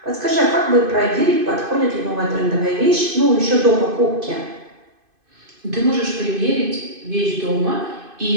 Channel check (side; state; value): left; late; 2.5 ms